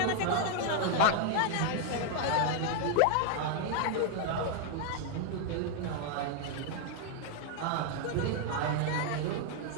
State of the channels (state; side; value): different; both; correlation 0.00